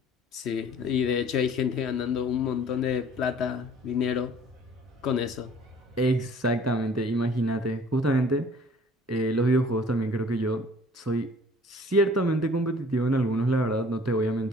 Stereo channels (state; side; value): normal; both; correlation 0.51